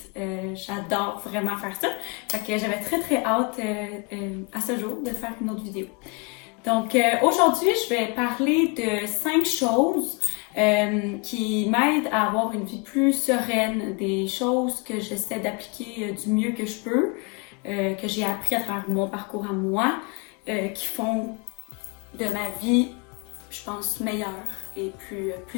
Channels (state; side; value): quieter; right; 32.5 dB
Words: j'adore vraiment faire ça. Fait que j'avais très hâte à ce jour de faire une autre vidéo. Donc aujourd'hui, je vais parler de 5 choses qui m'aident à avoir une vie plus sereine, des choses que j'essaie d'appliquer du mieux que je peux, que j'ai appris à travers mon parcours à moi, qui font de ma vie, je pense, meilleure et